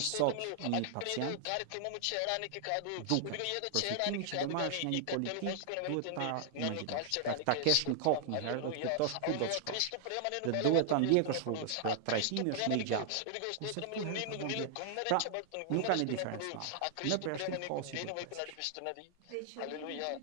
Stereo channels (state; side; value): different; both; correlation -0.01